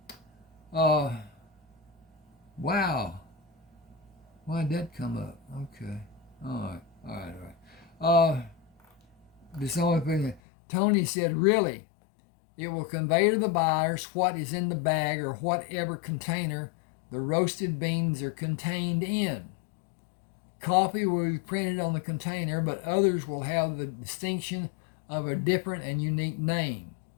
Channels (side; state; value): right; drops out; at 10.4 s